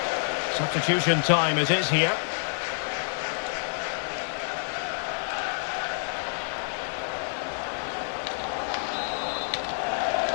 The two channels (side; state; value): right; silent; digital silence